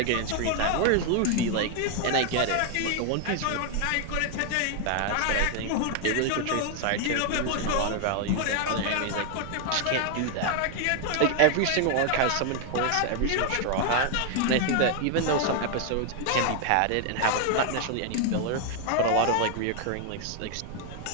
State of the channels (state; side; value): different; both; correlation 0.00